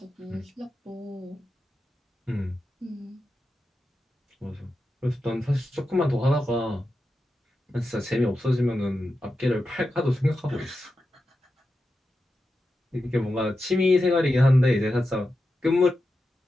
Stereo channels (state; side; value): normal; both; correlation 0.90